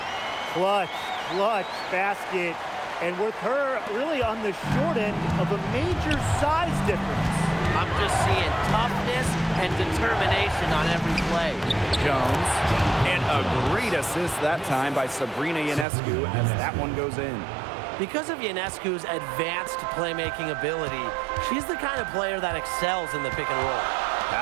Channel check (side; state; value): left; drops out; at 15.9 s